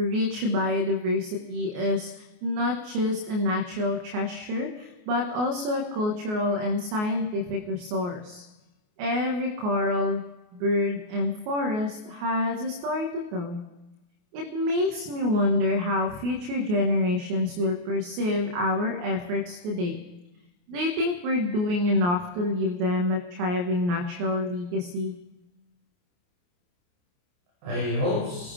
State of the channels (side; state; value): left; late; 28 ms